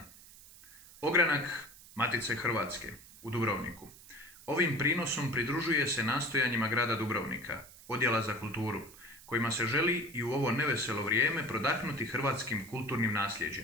Ogranak Matice Hrvatske u Dubrovniku. Ovim prinosom pridružuje se nastojanjima grada Dubrovnika, Odjela za kulturu, kojima se želi i u ovo neveselo vrijeme prodahnuti hrvatskim kulturnim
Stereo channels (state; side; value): noise; right; hiss, 20 dB below the sound